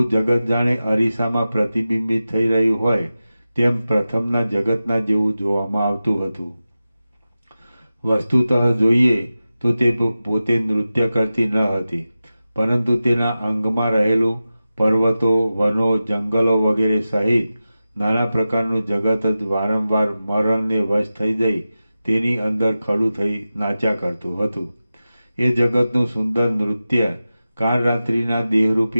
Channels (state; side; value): inverted; both; correlation -0.94